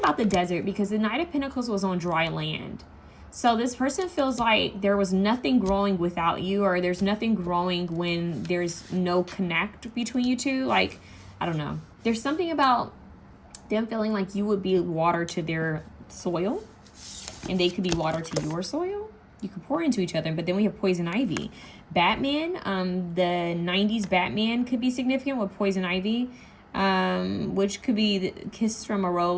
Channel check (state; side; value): identical; both; correlation 1.00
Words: the desert because the Knight of Pentacles was on dry land. So this person feels like there was nothing growing without you, or there's nothing growing when there's no connect between you two. Like, I don't know. There's something about them feeling like you would be water to their soil and they could be water to your soil. You could pour into each other, but then we have Poison Ivy. Batman, the 90s Batman could be significant with Poison Ivy. Which could be the Kiss from a